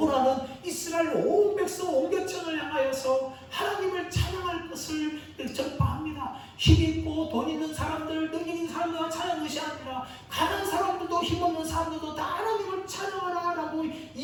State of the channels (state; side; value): identical; both; correlation 1.00